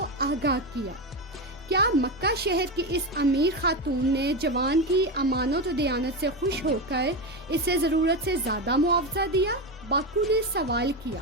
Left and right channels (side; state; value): both; normal; correlation 0.16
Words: آگاہ کیا۔ کیا مکہ شہر کی اس امیر خاتون نے جوان کی امانت و دیانت سے خوش ہو کر اسے ضرورت سے زیادہ معاوضہ دیا؟ باکو نے سوال کیا۔